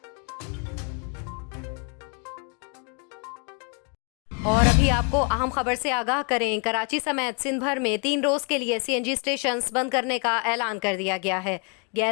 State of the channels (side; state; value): right; quieter; 36.0 dB